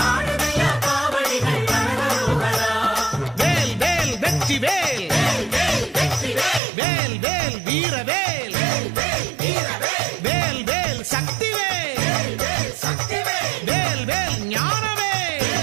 ஆடுதையா காவடிகள் அரகரோகரா. வேல் வேல் வெற்றி வேல் வேல் வேல் வெற்றி வேல். வேல் வேல் வீரவேல் வேல் வேல் வீரவேல். வேல் வேல் சக்தி வேல் வேல் வேல் சக்திவேல். வேல் வேல் ஞானவேல்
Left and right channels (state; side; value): drops out; left; at 6.6 s